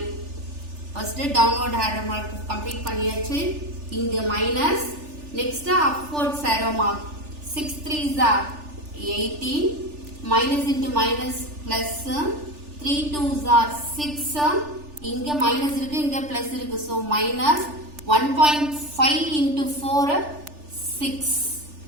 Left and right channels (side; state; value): left; late; 3.4 ms